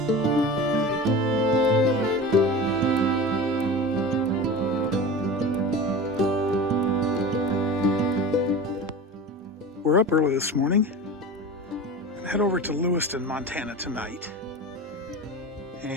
We're up early this morning and head over to Lewiston, Montana tonight.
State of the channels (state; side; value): normal; both; correlation 0.32